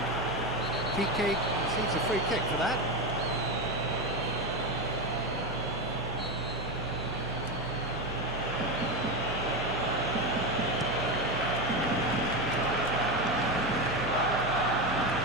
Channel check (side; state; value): both; normal; correlation 0.14